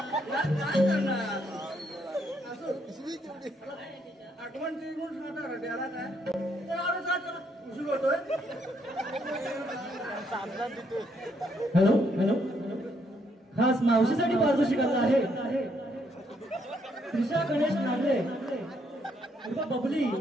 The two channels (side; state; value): both; normal; correlation 0.73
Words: काय करणार असं आठवण ती म्हणून सांगता त्याला काय उशीर होतोय. हॅलो हॅलो खास मावशीसाठी पारितोषिक आलं आहे. त्रिशा गणेश नागरे बबली